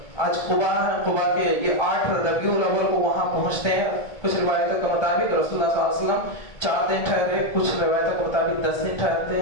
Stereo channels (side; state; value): right; late; 1.7 ms